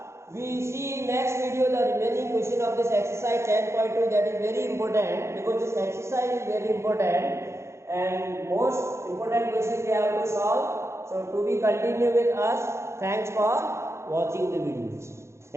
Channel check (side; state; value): left; late; 0.13 ms